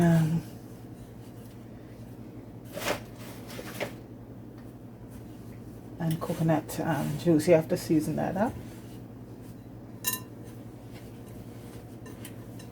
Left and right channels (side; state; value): both; identical; correlation 1.00